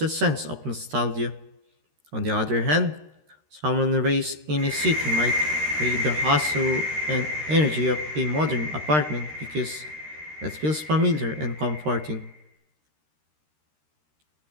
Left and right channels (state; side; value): late; left; 13 ms